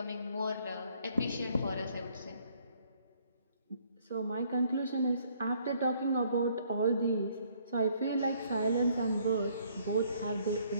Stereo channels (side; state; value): both; inverted; correlation -0.64